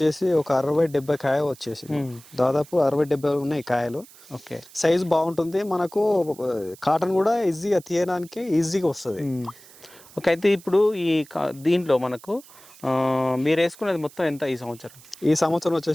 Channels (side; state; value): right; noise; hiss, 22 dB below the sound